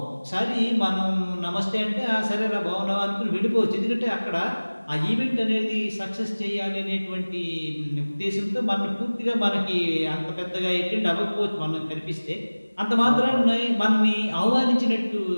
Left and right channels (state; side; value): inverted; both; correlation -1.00